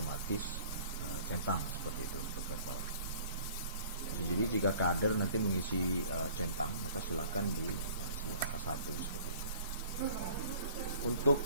centang seperti itu untuk verbal. Jadi jika kader nanti mengisi centang, maka silakan diisi angka 1 seperti itu. Untuk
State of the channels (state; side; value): inverted; both; correlation -0.50